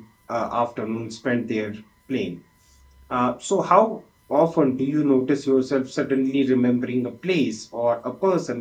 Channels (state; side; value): identical; both; correlation 1.00